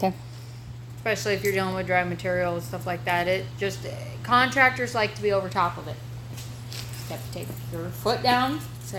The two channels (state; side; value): identical; both; correlation 1.00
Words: Especially if you're dealing with dry material and stuff like that. Contractors like to be over top of it. You have to take your foot down,